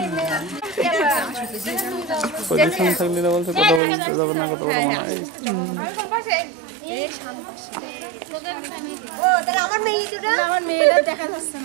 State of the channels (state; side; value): drops out; left; at 3.8 s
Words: পজিশন থাকলে না বলছে কথা বলতে যাবে না কথা বলা মনে হয় আমার মেয়েরা দেখা যাচ্ছে